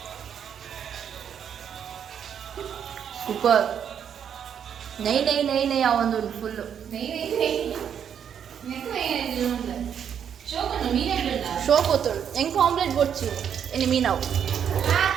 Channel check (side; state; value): left; quieter; 8.4 dB